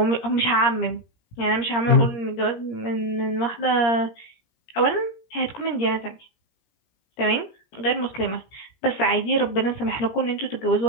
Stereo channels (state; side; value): late; right; 17 ms